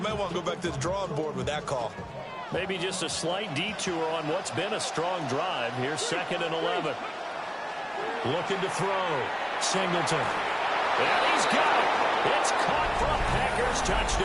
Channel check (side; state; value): both; identical; correlation 1.00